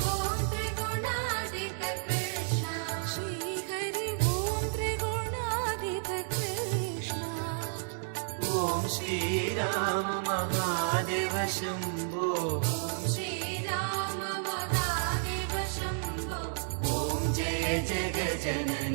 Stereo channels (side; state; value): left; silent; digital silence